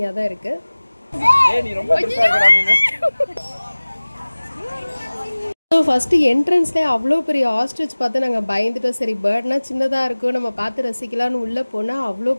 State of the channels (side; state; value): both; inverted; correlation -1.00